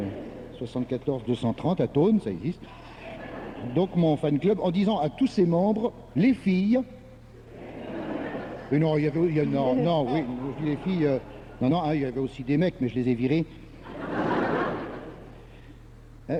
74 230 à Thônes, ça existe. Donc mon fan club, en disant à tous ses membres, les filles... Et non, non, oui, je dis les filles... non, hein, il y avait aussi des mecs, mais je les ai virés.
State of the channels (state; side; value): identical; both; correlation 1.00